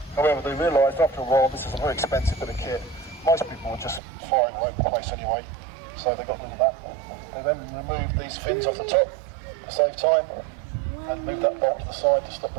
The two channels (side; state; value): left; drops out; at 4.0 s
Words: However, they realised after a while this is a very expensive bit of kit. Most people were just firing all over the place anyway, so they got rid of that. They then removed these fins off the top to save time and moved that bolt to the side to stop